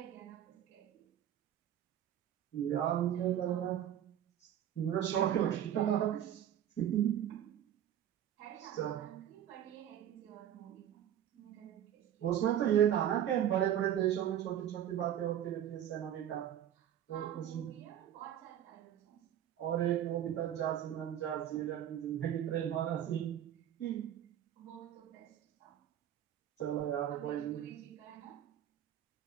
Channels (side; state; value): left; quieter; 10.7 dB